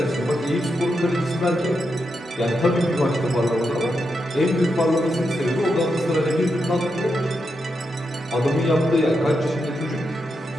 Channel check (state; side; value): normal; both; correlation 0.85